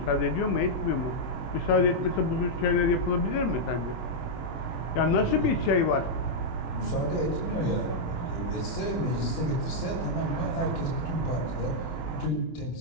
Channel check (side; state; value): right; late; 24 ms